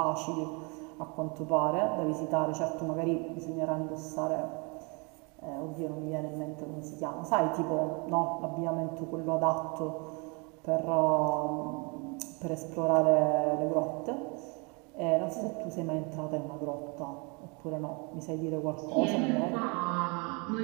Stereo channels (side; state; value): left; quieter; 31.7 dB